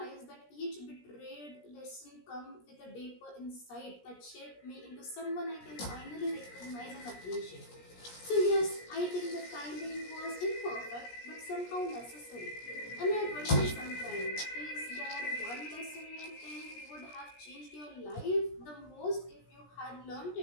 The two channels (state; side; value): late; right; 17 ms